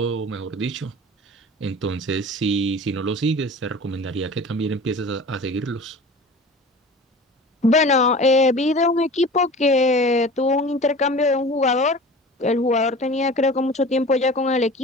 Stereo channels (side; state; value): both; normal; correlation 0.39